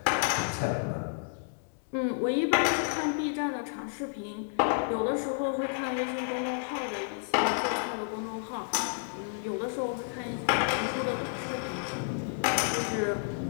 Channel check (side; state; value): right; silent; digital silence